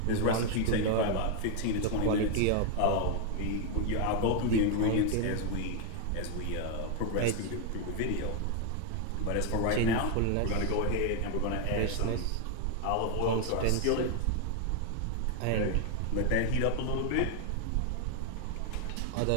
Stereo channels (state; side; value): different; both; correlation 0.00